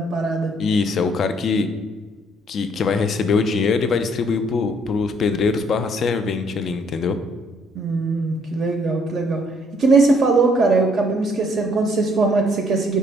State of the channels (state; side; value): normal; both; correlation 0.65